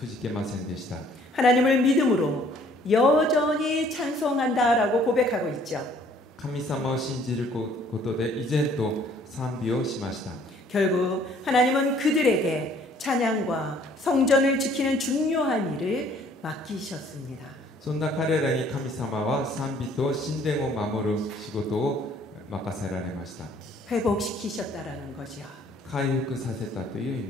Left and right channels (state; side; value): normal; both; correlation 0.59